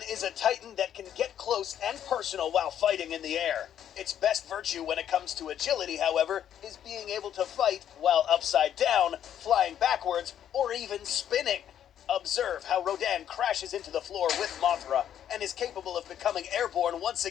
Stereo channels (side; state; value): right; quieter; 10.0 dB